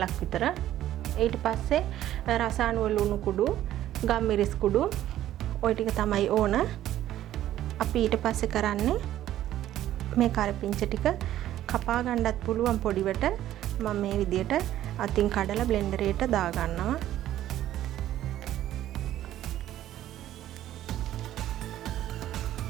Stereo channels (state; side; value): quieter; left; 12.8 dB